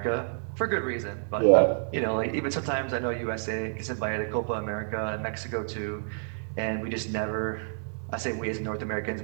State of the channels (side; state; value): left; silent; digital silence